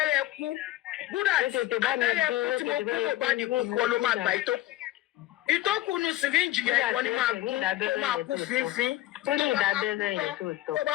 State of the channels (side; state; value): right; quieter; 15.9 dB